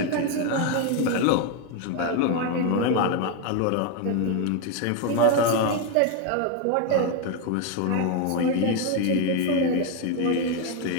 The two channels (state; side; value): different; both; correlation 0.01